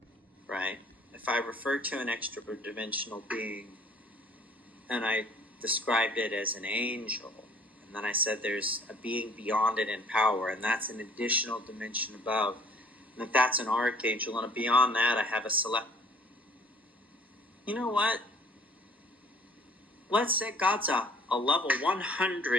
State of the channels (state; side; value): normal; both; correlation 0.55